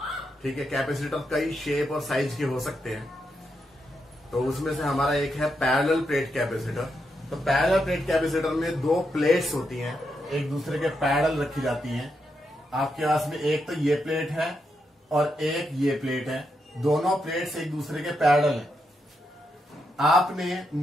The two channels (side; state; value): both; normal; correlation 0.82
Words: ठीक है, कैपेसिटर कई शेप और साइज के हो सकते हैं, तो उसमें से हमारा एक है पैरेलल प्लेट कैपेसिटर। तो पैरेलल प्लेट कैपेसिटर में दो प्लेट्स होती हैं, एक दूसरे के पैरेलल रखी जाती हैं। आपके पास में एक तो ये प्लेट है और एक ये प्लेट है, दोनों प्लेट्स एक दूसरे के पैरेलल हैं। आपने